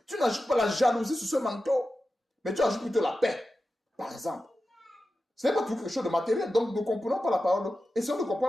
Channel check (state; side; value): normal; both; correlation 0.92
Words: Tu n'ajoutes pas la jalousie sur ce manteau. Mais tu ajoutes plutôt la paix, par exemple. Ce n'est pas tout quelque chose de matériel. Donc, nous ne comprenons pas la parole. Essayons de